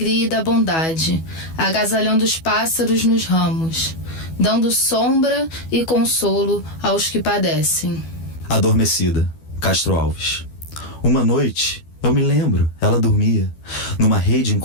e da bondade, agasalhando os pássaros nos ramos, dando sombra e consolo aos que padecem. Adormecida, Castro Alves. Uma noite, eu me lembro, ela dormia, numa rede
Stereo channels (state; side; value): late; right; 12 ms